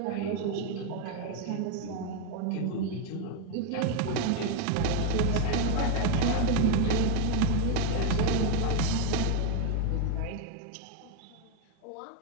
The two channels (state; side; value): different; both; correlation 0.01